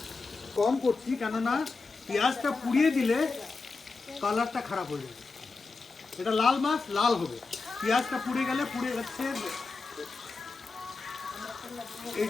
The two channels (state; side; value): quieter; right; 4.1 dB